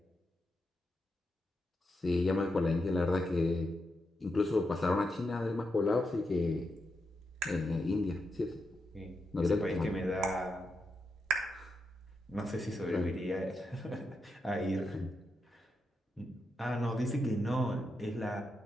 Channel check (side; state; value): both; normal; correlation 0.85